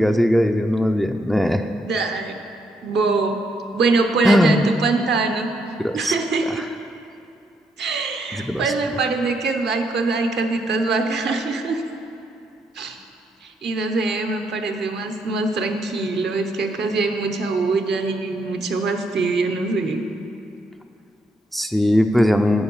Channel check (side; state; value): both; normal; correlation 0.77